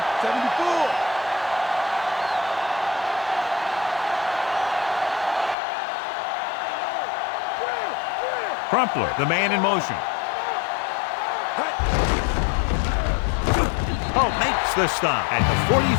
74. Crumpler, the man in motion. Oh, makes the stop at the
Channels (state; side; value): drops out; right; at 5.6 s